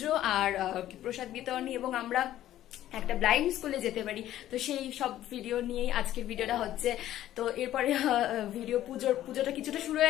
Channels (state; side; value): quieter; right; 13.0 dB